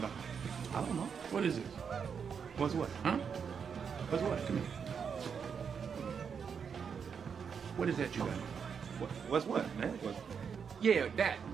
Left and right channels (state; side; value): quieter; left; 6.6 dB